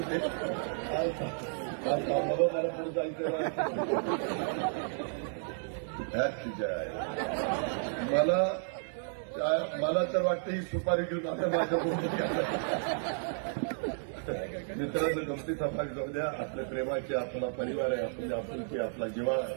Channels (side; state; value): left; silent; digital silence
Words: जायचं. मला तर वाटतं ही सुपारी घेऊन आता माझ्या मित्रांनो, गमती समाज जाऊ द्या. आपल्या प्रेमाचे, आपला परिवार आहे, आपली आपुलकी, आपला जिव्हाळा